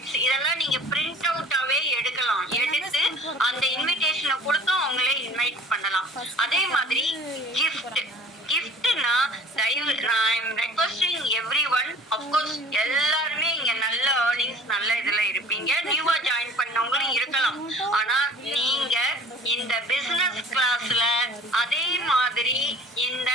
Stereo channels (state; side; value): normal; both; correlation 0.47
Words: இதெல்லாம் நீங்க பிரிண்ட் அவுட்டாவே எடுக்கலாம். எடுத்து அந்த இன்விடேஷனை கொடுத்து அவங்களே இன்வைட் பண்ணலாம். அதே மாதிரி கிஃப்ட்னா I am requesting everyone, of course எல்லாருமே இங்க நல்ல ஏர்னிங்ஸ் நல்ல இதுல இருப்பீங்க, நியூவா ஜாயின் பண்ணவங்களும் இருக்கலாம். ஆனா நீங்க இந்த பிசினஸ் கிளாஸ்ல அதே மாதிரி இந்த